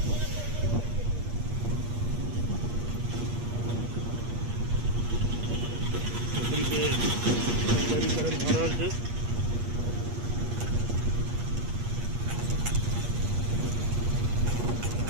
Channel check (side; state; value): left; late; 8.4 ms